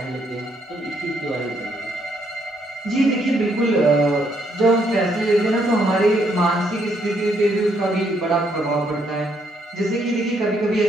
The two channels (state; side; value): normal; both; correlation 0.72